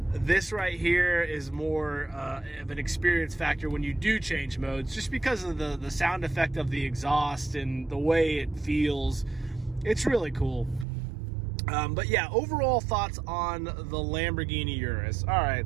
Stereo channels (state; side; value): drops out; left; at 10.9 s